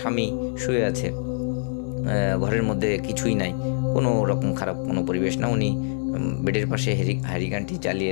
শুয়ে আছে, ঘরের মধ্যে কিছুই নাই, কোনো রকম খারাপ কোনো পরিবেশ না। উনি বেডের পাশে হ্যারিকেনটি জ্বালিয়ে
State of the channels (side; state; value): right; silent; 62 dB below the other